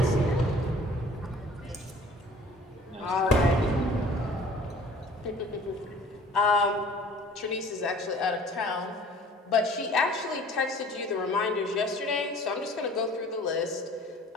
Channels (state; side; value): normal; both; correlation 0.50